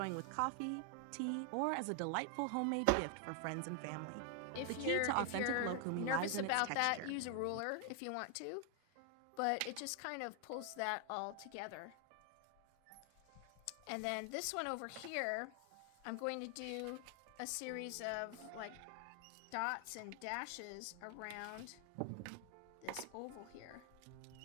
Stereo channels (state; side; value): different; both; correlation 0.00